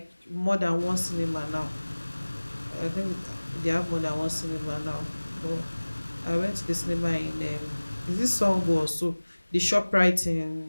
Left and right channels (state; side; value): inverted; both; correlation -1.00